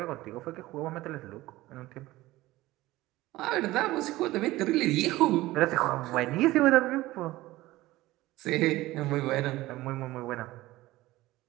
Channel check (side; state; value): left; quieter; 17.8 dB